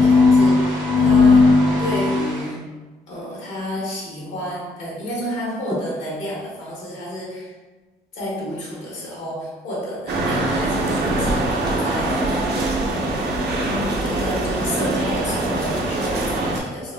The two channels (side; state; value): both; normal; correlation 0.66